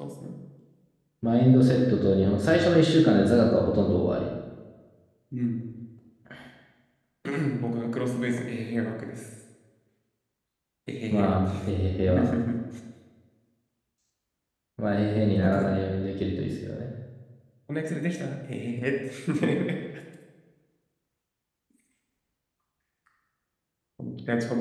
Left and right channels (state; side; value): identical; both; correlation 1.00